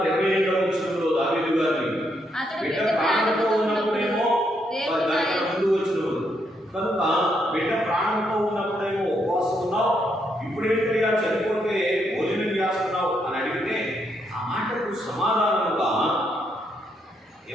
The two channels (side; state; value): both; normal; correlation 0.77